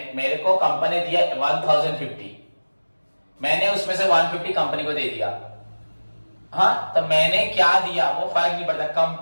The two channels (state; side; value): inverted; both; correlation -1.00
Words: मेरे को कंपनी दिया 1050, मैंने उसमें से 150 कंपनी को दे दिया। हाँ, तो मैंने क्या दिया वो फर्क नहीं पड़ता,